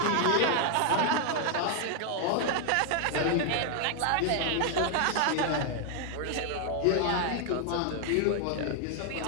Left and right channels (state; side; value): different; both; correlation 0.00